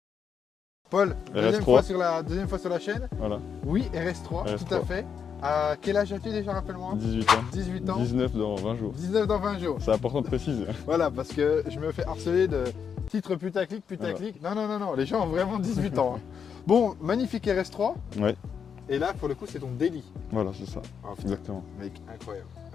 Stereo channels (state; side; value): quieter; right; 7.0 dB